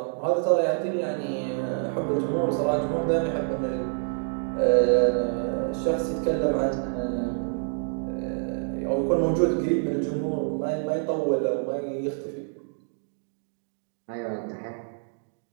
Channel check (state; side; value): silent; left; 60 dB below the other